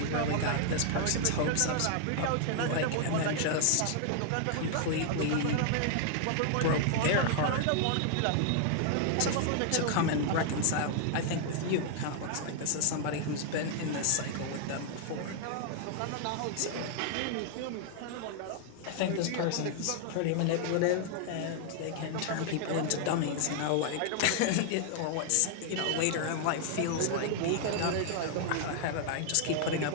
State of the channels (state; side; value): different; both; correlation 0.00